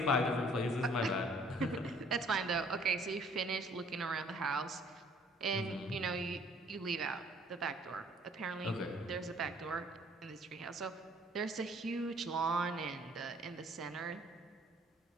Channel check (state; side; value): normal; both; correlation 0.59